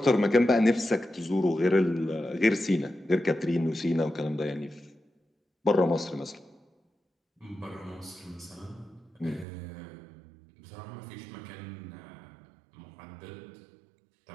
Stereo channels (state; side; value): drops out; left; at 9.5 s